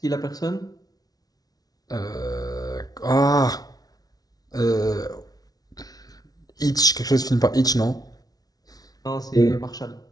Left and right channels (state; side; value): late; right; 0.18 ms